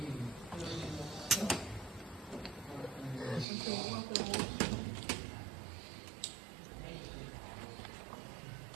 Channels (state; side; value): drops out; left; at 3.5 s